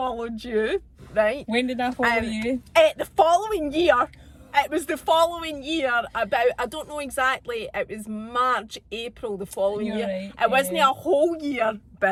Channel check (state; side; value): identical; both; correlation 1.00